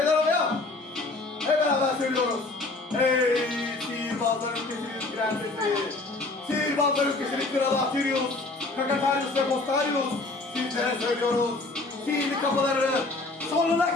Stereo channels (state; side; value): quieter; right; 3.3 dB